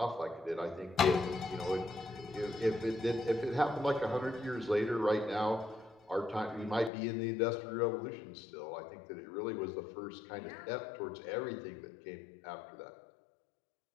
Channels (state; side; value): drops out; right; at 6.9 s